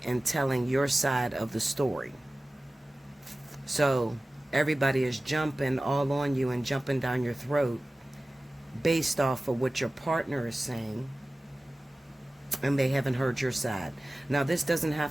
and telling your side of the story. So everybody is jumping all on you and jumping down your throat based off of what your partner is saying, and they haven't heard your side. Now, this doesn't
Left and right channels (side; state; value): both; normal; correlation 0.97